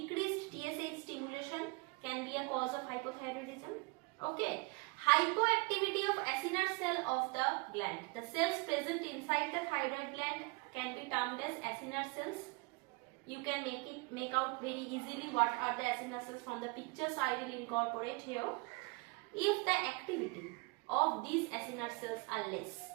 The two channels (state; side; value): quieter; left; 28.2 dB